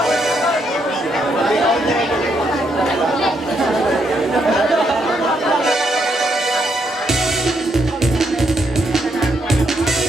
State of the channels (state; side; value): normal; both; correlation 0.76